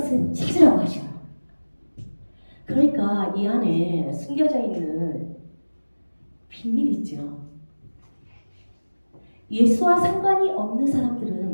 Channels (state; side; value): inverted; both; correlation -1.00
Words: 찾으라고 하셔요. 그러니까 이 안에 숨겨져 있는 비밀이 있죠. 예수와 상관이 없는